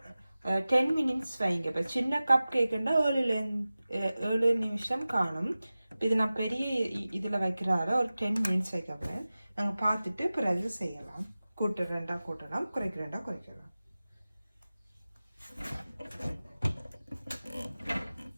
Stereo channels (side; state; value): both; inverted; correlation -0.97